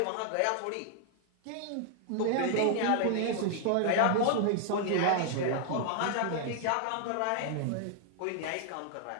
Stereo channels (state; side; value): different; both; correlation 0.00